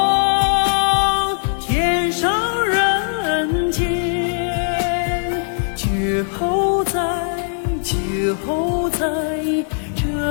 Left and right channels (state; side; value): silent; right; digital silence